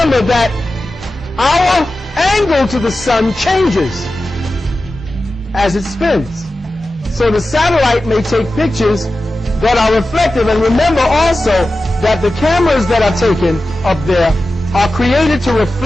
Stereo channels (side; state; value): both; normal; correlation 0.94